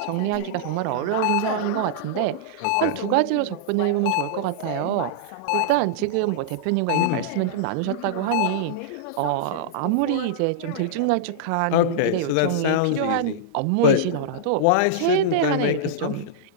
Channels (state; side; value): different; both; correlation -0.02